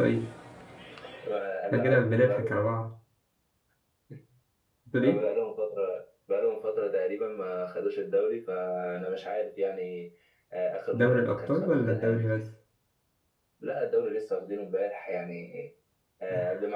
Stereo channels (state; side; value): identical; both; correlation 1.00